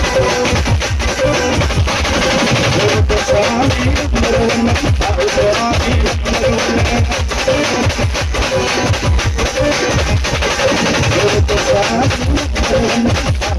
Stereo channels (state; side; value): identical; both; correlation 1.00